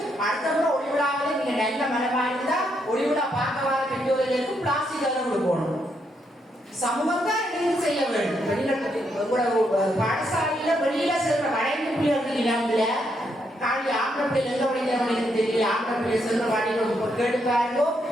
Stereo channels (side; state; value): both; normal; correlation 0.77